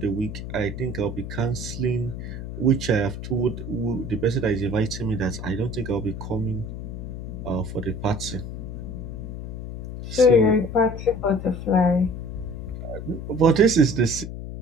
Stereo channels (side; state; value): left; noise; hum, 7 dB below the sound